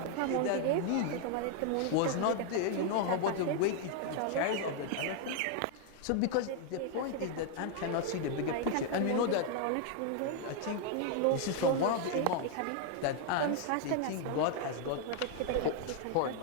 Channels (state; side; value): different; both; correlation 0.00